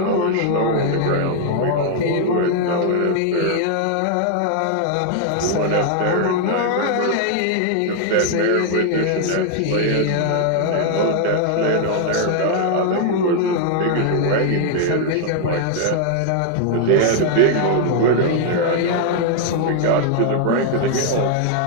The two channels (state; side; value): different; both; correlation 0.00